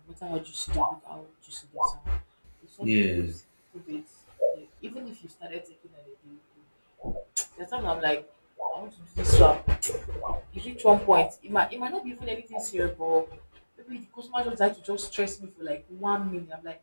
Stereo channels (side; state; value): both; inverted; correlation -1.00